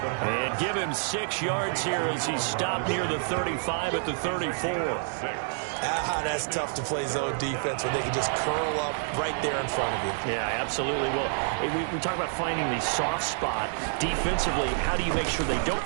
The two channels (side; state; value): left; silent; 59 dB below the other